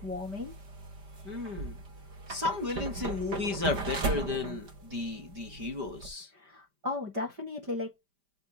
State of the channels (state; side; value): late; left; 5.1 ms